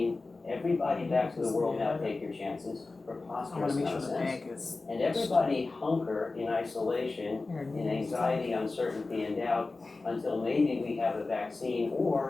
everybody back to the world now, take your chances, preposterous nonsense, and everybody hunker in isolation, in anxiety, uncertainty, and doubt until maybe we have a vaccine,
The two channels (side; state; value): right; quieter; 3.6 dB